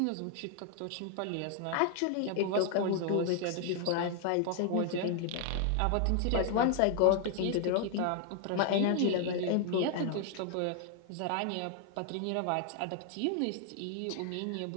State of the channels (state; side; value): different; both; correlation 0.00